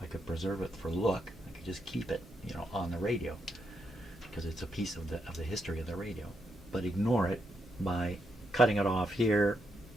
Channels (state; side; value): normal; both; correlation 0.81